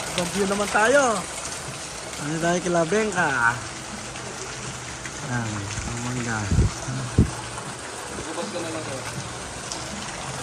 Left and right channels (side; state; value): both; identical; correlation 1.00